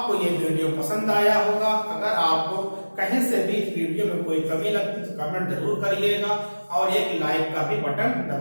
ये वीडियो पसंद आया होगा। अगर आपको कहीं से भी इस वीडियो में कोई कमी लगती तो कमेंट जरूर करिएगा और एक लाइक का भी बटन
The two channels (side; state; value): both; inverted; correlation -1.00